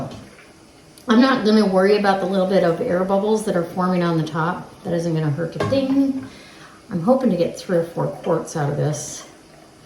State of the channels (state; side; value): identical; both; correlation 1.00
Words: I'm not gonna worry about the little bit of air bubbles that are forming on the top. That isn't gonna hurt a thing. I'm hoping to get 3 or 4 quarts out of this.